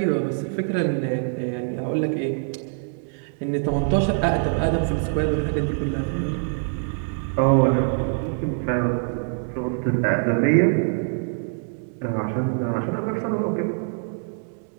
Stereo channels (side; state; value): left; silent; 60 dB below the other